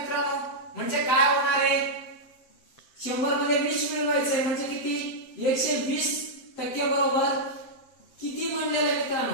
म्हणजे काय होणार आहे? 100 मध्ये 20 मिळवायचंय म्हणजे किती? 120% बरोबर किती म्हणलेलं आहे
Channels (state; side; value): late; right; 7.7 ms